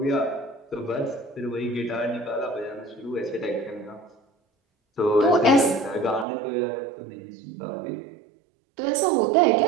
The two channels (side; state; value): left; drops out; at 6.2 s